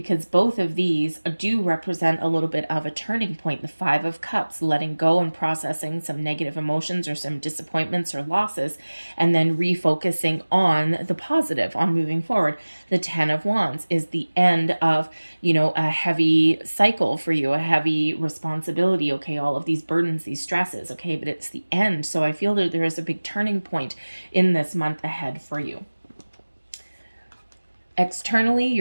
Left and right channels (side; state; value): both; inverted; correlation -1.00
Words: both of these do represent a little bit of a turning point. The Five of Cups, letting go and processing some negative emotions or some disappointments or losses, and then refocusing on the positive, on moving forward. The Ten of Wands is the end of, a heavy cycle for you, a heavy responsibility, okay, all of these burdens, these stresses, okay, but it's the end. So I feel that there is a big turning point in this month ahead for you. Externally,